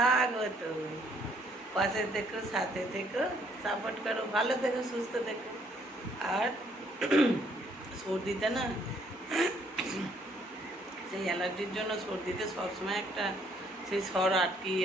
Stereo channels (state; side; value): normal; both; correlation 0.66